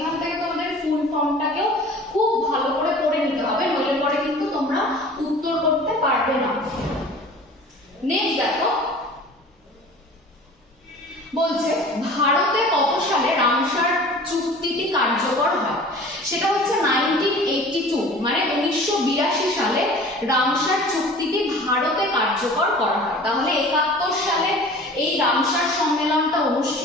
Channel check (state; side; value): normal; both; correlation 0.43